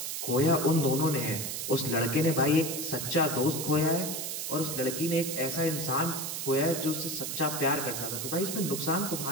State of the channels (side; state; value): right; noise; hiss, 4 dB below the sound